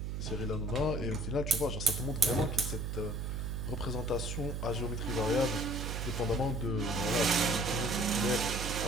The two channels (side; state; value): right; noise; hum, 3 dB below the sound